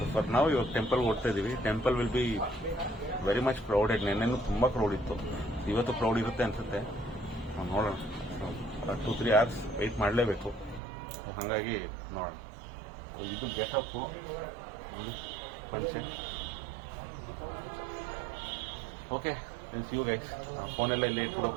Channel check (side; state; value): left; drops out; at 10.8 s